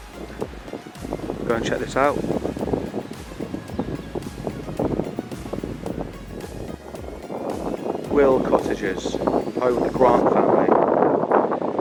Go and check this out. Will cottages, home of the Grant family,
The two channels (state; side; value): identical; both; correlation 1.00